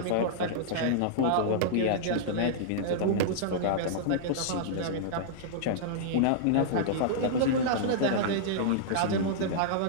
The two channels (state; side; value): different; both; correlation -0.02